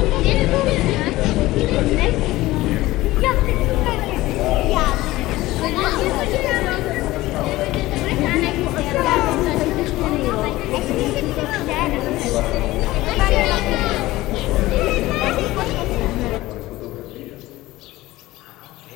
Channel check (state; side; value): quieter; right; 17.9 dB